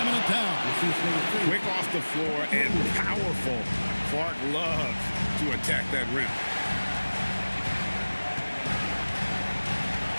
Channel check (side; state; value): both; inverted; correlation -1.00